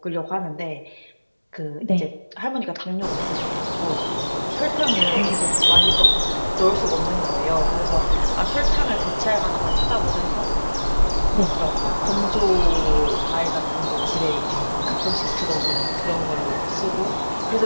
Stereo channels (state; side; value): inverted; both; correlation -1.00